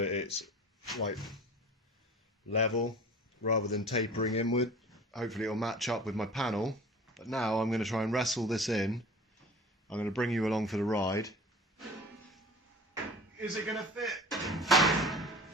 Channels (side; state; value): both; normal; correlation 0.41